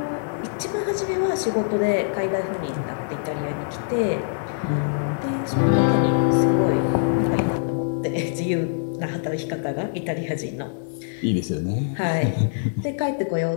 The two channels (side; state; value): right; silent; 61 dB below the other